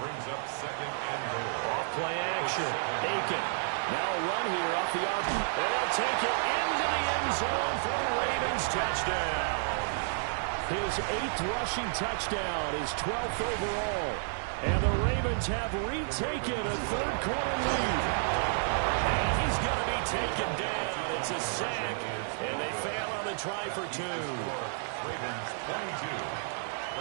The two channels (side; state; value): left; silent; digital silence